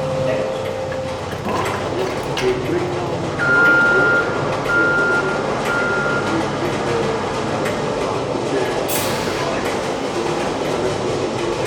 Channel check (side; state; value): both; identical; correlation 1.00